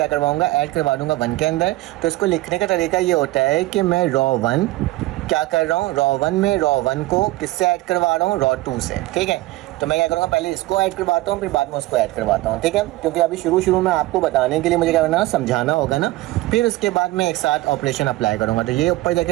करवाऊँगा, ऐड करवा दूँगा 1 के अंदर। तो इसको लिखने का तरीका ये होता है कि मैं रॉ 1 क्या कर रहा हूँ, रॉ 1 में रॉ 1 को किससे ऐड करवा रहा हूँ, रॉ 2 से। ठीक है, तो मैं क्या करूँगा, पहले इसको ऐड करवाता हूँ फिर बाद में उसको ऐड करवाता हूँ। ठीक है, क्योंकि अभी शुरू में आपको बताने के लिए मुझे क्या करना है, समझाना होगा ना, फिर उसके बाद मैं एक साथ ऑपरेशन अप्लाई करूँगा। तो ये ऊपर जाके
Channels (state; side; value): quieter; left; 18.4 dB